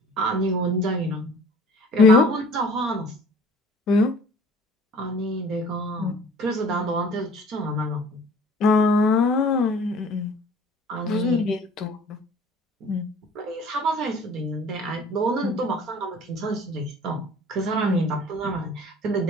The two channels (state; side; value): normal; both; correlation 0.49